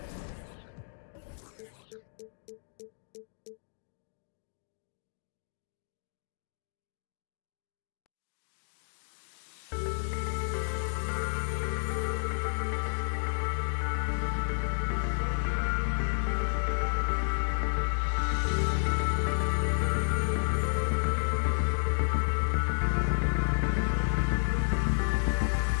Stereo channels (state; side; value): silent; right; digital silence